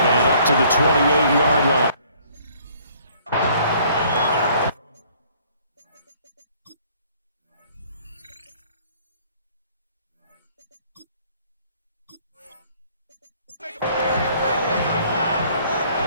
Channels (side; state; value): both; inverted; correlation -0.59